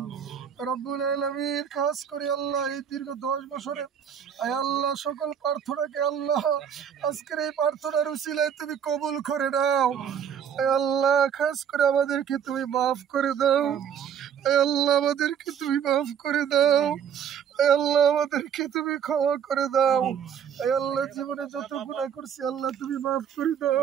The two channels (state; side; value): quieter; left; 8.2 dB